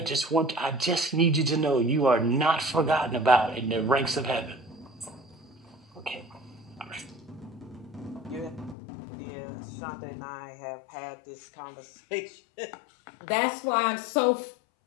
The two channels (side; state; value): right; drops out; at 8.8 s